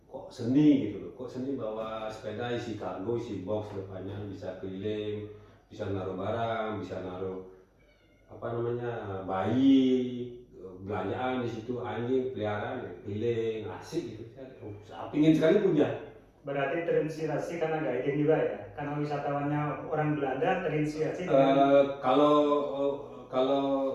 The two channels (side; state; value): both; identical; correlation 1.00